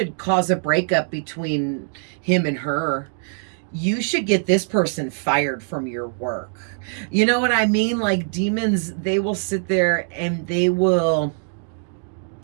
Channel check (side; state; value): left; silent; 61 dB below the other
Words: cause a breakup between him and her. You should get this person fired from your work. You know what I mean? Like demons, they will sit there and they will,